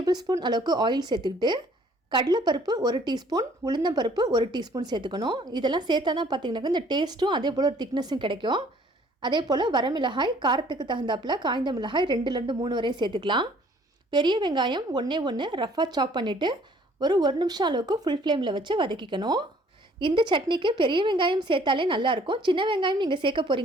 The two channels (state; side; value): normal; both; correlation 0.58